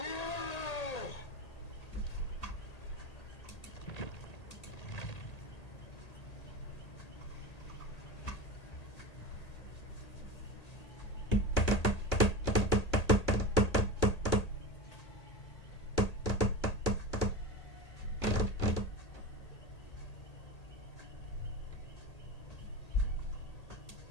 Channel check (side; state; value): right; late; 1.8 ms